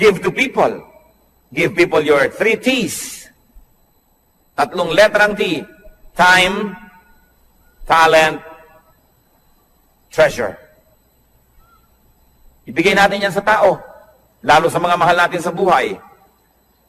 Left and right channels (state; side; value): identical; both; correlation 1.00